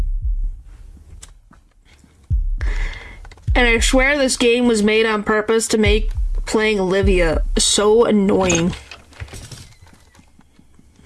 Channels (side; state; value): both; identical; correlation 1.00